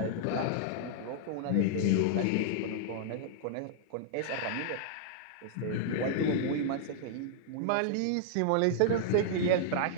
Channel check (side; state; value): both; different; correlation -0.01